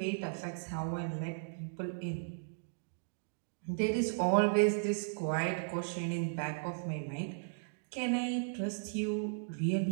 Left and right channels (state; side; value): silent; left; digital silence